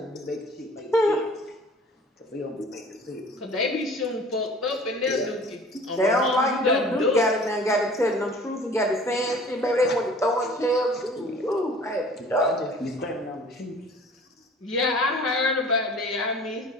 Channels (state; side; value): normal; both; correlation 0.47